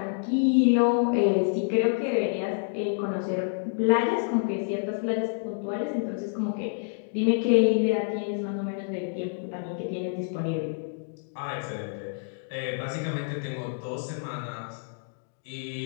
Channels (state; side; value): silent; right; digital silence